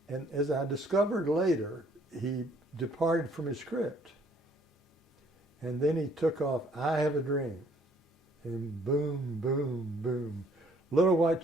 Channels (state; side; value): normal; both; correlation 0.62